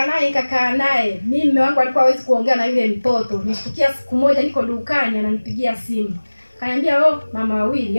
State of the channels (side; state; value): both; inverted; correlation -1.00